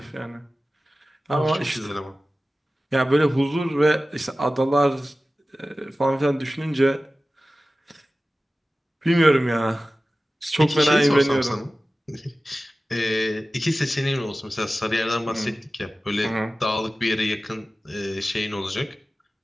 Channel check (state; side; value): normal; both; correlation 0.96